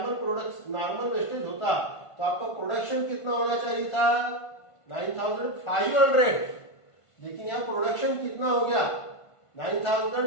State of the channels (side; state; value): right; late; 1.5 ms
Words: वेस्टेज होता तो आपका प्रोडक्शन कितना होना चाहिए था? 9,500। लेकिन यहां प्रोडक्शन कितना हो गया?